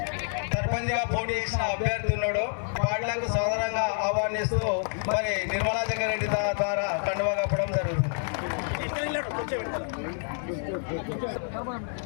సర్పంచ్ గా పోటీ చేసిన అభ్యర్థి ఉన్నాడు. వాళ్లకు సాధారణంగా ఆహ్వానిస్తూ మరి నిర్మలా జగ్గారెడ్డి ద్వారా కండువా కప్పడం జరుగుతుంది.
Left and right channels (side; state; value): right; silent; 59 dB below the other